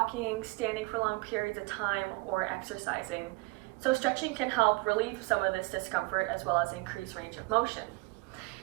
standing for long periods of time, or exercising. So stretching can help relieve some of this discomfort as well as increase range of motion.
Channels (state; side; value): quieter; left; 25.5 dB